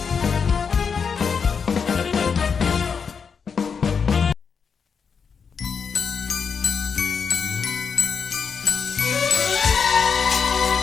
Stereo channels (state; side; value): quieter; right; 6.1 dB